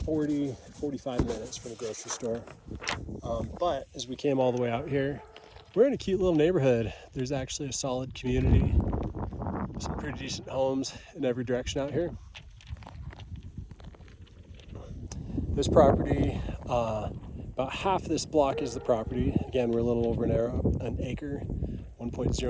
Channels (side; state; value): both; identical; correlation 1.00